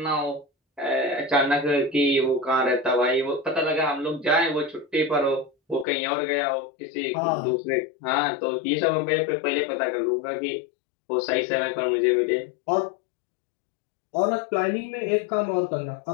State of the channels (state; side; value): drops out; right; at 5.9 s